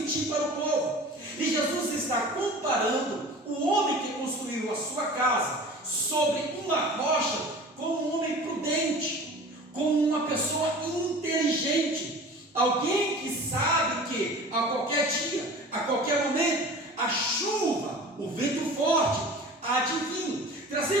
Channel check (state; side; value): normal; both; correlation 0.40